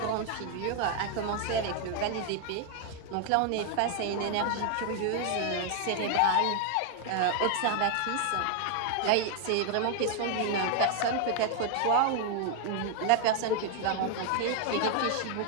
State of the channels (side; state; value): both; different; correlation 0.00